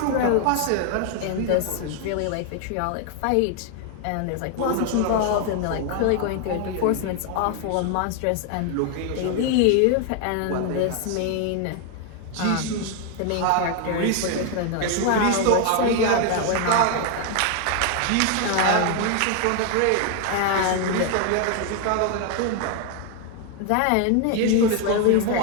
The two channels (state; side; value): different; both; correlation 0.01